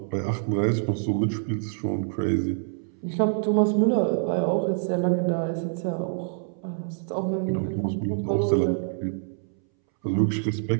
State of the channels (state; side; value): silent; left; 61 dB below the other